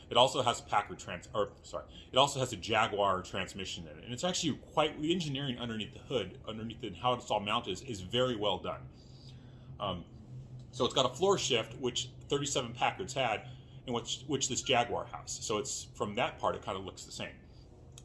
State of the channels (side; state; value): both; identical; correlation 1.00